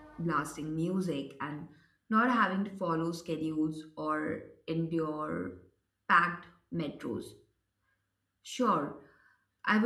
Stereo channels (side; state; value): both; identical; correlation 1.00